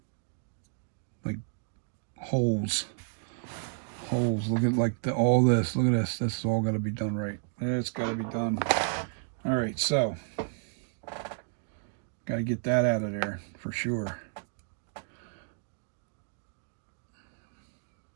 holes. Look at like all this. Look at this. This is all got to be done right. It's got to be done. All right, so got to get that out of there for sure.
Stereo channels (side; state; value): left; silent; digital silence